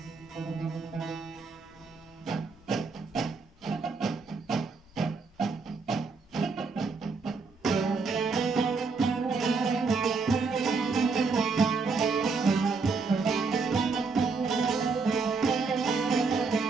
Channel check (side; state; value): left; quieter; 4.5 dB